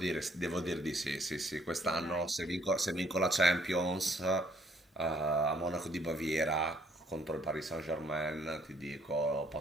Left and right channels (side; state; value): both; normal; correlation 0.65